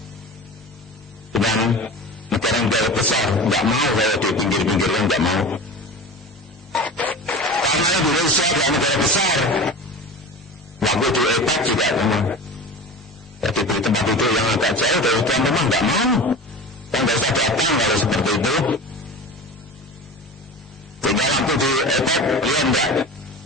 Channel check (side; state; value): both; normal; correlation 0.33